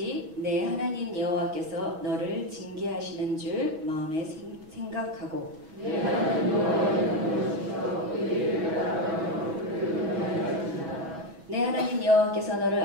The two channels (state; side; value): late; left; 6.2 ms